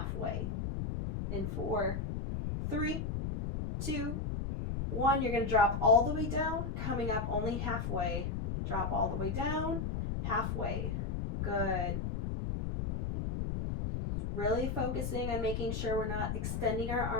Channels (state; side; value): noise; left; rumble, 2 dB below the sound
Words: In 4, 3, 2, 1, you're going to drop all the way down, coming up only halfway. Drop all the way down, halfway. Good. Really focusing on making sure we're not extending our